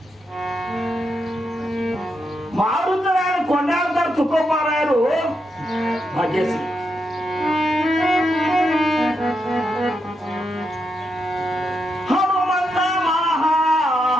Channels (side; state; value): both; normal; correlation 0.83